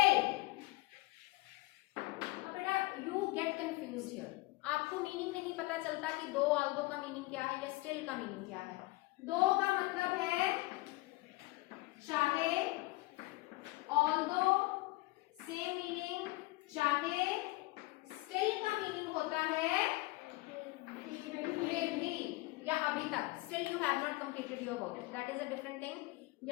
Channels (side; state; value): right; quieter; 21.4 dB